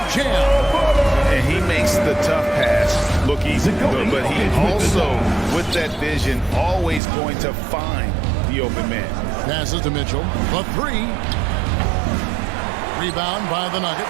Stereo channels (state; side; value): drops out; left; at 7.0 s